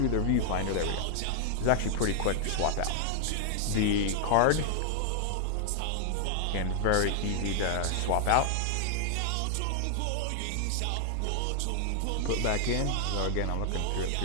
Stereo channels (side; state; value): both; different; correlation -0.01